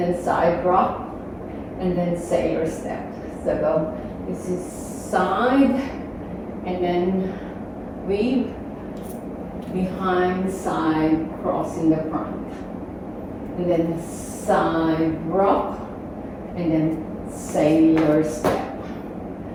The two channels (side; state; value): both; identical; correlation 1.00